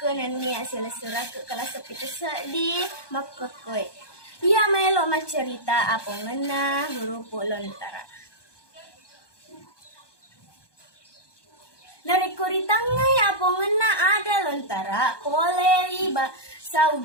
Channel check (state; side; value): late; right; 1.2 ms